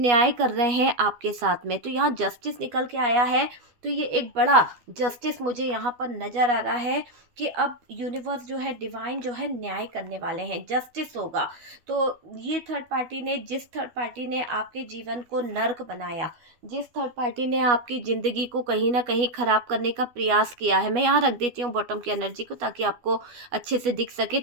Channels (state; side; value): late; left; 12 ms